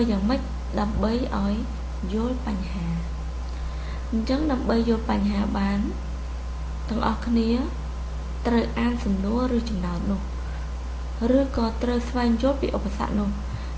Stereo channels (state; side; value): identical; both; correlation 1.00